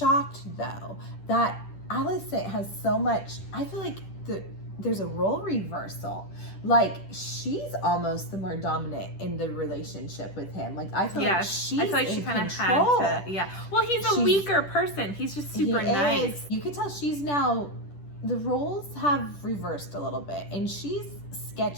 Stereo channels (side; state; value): right; late; 10 ms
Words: though, that Alicent has so much. I feel like there's a role reversal. Like, she's almost the more dominant in the relationship with him. Like, I feel like she's in control. Had to. Yeah. Well, he's a weaker person. He's just super nice. You can tell she's now. The roles have reversed a little bit, and she's